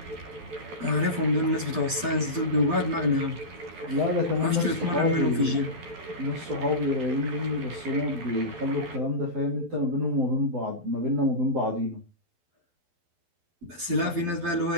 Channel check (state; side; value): late; left; 12 ms